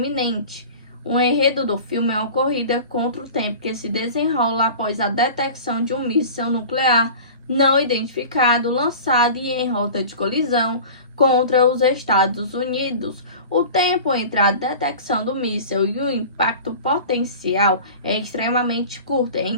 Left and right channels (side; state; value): both; inverted; correlation -0.38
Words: O enredo do filme é uma corrida contra o tempo que se desenrola após a detecção de um míssil nuclear não identificado lançado e em rota de colisão contra os Estados Unidos. O tempo entre a detecção do míssil e o impacto potencial é extremamente curto,